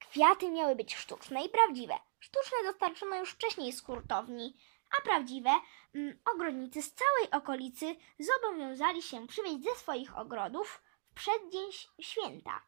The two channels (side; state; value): left; silent; digital silence